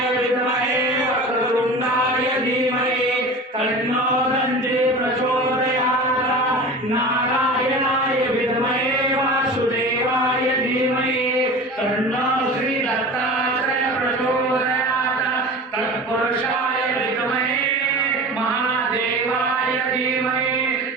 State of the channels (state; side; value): normal; both; correlation 0.34